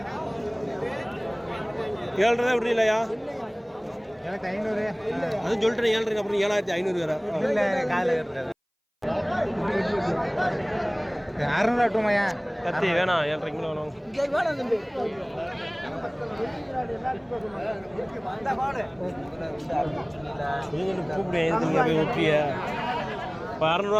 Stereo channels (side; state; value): both; identical; correlation 1.00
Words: ஏழரை தான் விடுறீங்களா எனக்கு 500 அதுவும் சொல்லிட்டேன் 7,500 அப்புறம் 7,500 வேற இல்லை காலையில் கட்டுறது 600 கட்டுமையா கத்தி வேணாம் 7,500 கிலோ வேணும் கூப்பிடுவேன் போய் விட்டுறிய இப்போ